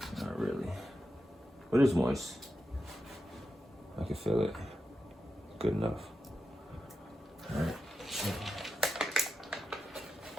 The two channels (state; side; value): normal; both; correlation 0.89